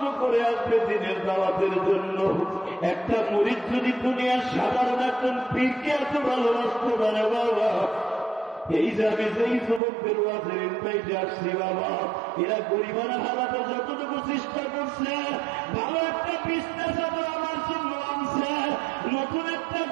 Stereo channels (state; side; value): drops out; left; at 9.8 s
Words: করে আসবে দিনের দাওয়াতের জন্য। একটা মুরিদ যদি দুনিয়ার সাধারণ একজন পীরকে এত ভালোবাসতে পারে বাবা, এই যাবে যেই যুবকদের ওয়াজের ইনভাইটে আসছি বাবা, এরা গরিবানা হালাতে যতটুকু চেষ্টা করছে, ভালো একটা বিছনা চাদর আমার জন্য আনছে, নতুন একটা